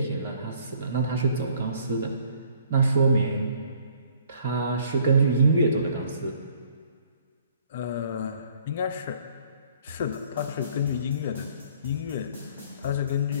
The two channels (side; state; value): both; inverted; correlation -0.59